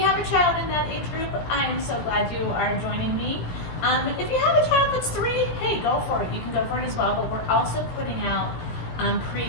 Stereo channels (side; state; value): right; late; 17 ms